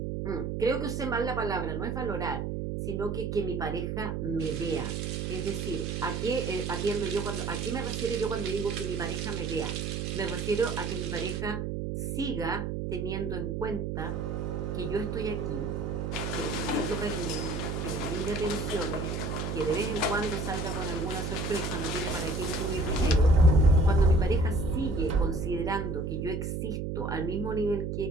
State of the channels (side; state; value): right; noise; hum, 2 dB below the sound